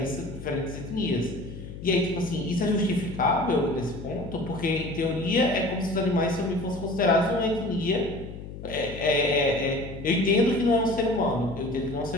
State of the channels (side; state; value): left; noise; hum, 11 dB below the sound